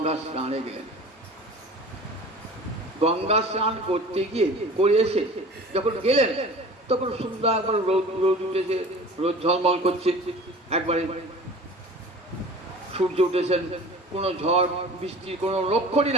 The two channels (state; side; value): normal; both; correlation 0.41